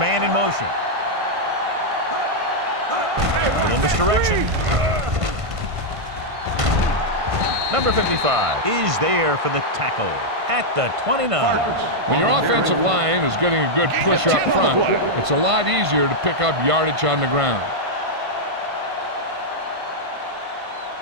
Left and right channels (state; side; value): late; left; 1.5 ms